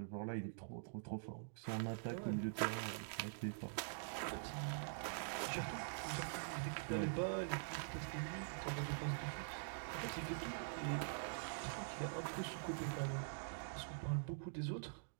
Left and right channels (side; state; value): left; silent; digital silence